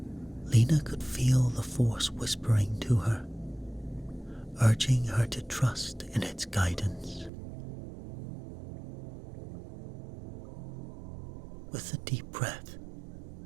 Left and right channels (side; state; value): left; drops out; at 7.3 s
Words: Lena could feel the Force whispering to her, urging her to trust in its guidance. With a deep breath,